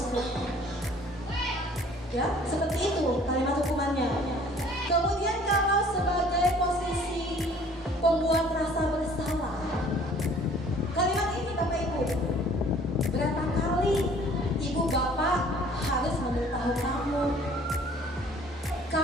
Ya, seperti itu kalimat hukumannya. Kemudian kalau sebagai posisi pembuat rasa bersalah, kalimat ini Bapak Ibu, berapa kali ibu bapak harus memberitahu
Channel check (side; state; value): both; normal; correlation 0.53